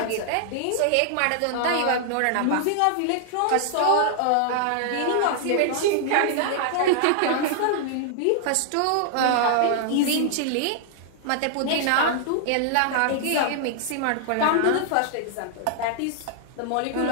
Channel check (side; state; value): both; different; correlation -0.01